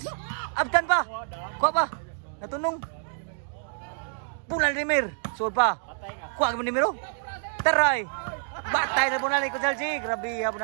Aptan pa. Kuha pa. Natunong. Pulan Rimir. Suod pa. Kuha ka mo ni Miro. Taray. Batay na po na ni Konselji. Grabe ha po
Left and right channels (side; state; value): left; silent; digital silence